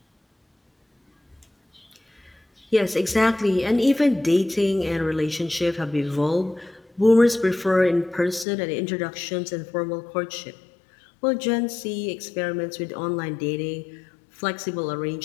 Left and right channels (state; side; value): drops out; right; at 8.5 s